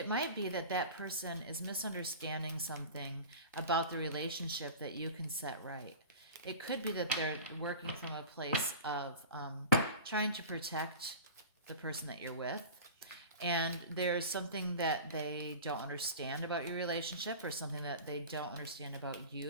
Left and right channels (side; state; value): both; inverted; correlation -0.35